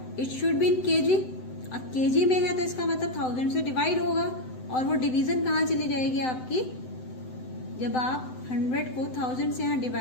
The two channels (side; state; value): right; late; 7.8 ms